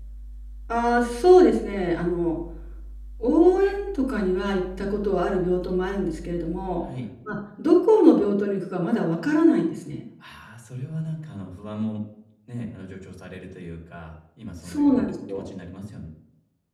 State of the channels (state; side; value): identical; both; correlation 1.00